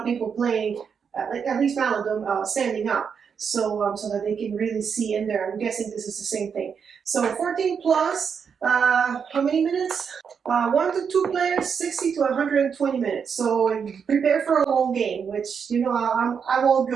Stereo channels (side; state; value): left; quieter; 6.6 dB